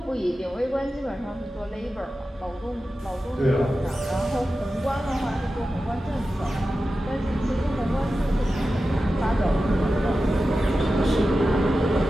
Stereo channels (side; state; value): both; normal; correlation 0.93